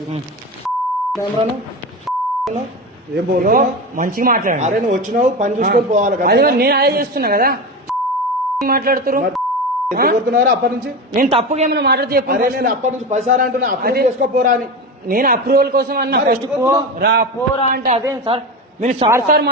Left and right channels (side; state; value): both; normal; correlation 0.22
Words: ఏం పోను మంచిగా మాట్లాడండి. అరే నువ్వు వచ్చినావు పని చూసుకొని పోవాలి కదా. నేను అదే చేస్తున్నా కదా మాట్లాడుతున్నారు అప్పటి నుంచి నేను తప్పుగా ఏమైనా మాట్లాడితే చెప్పండి. నేను అప్పటి నుంచి 10 సార్లు అంటున్నా అప్రూవ్ చేసుకోపోరా అని. నేను అప్రూవల్ కోసం అన్నా ఫస్ట్ పోరా అంటే అదేం సార్ మీరు సార్